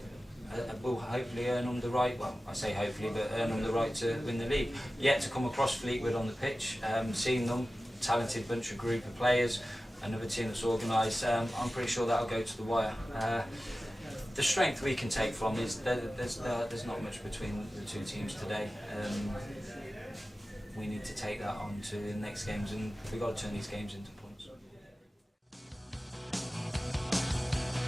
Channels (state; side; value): normal; both; correlation 0.95